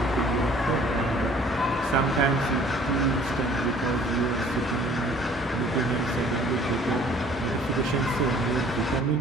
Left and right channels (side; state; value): both; normal; correlation 0.54